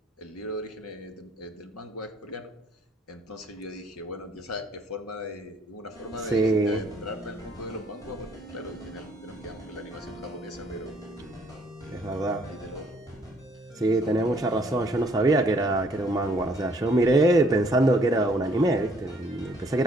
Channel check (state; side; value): normal; both; correlation 0.63